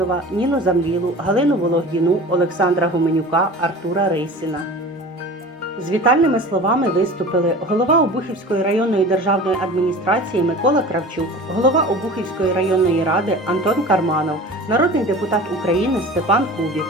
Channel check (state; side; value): normal; both; correlation 0.38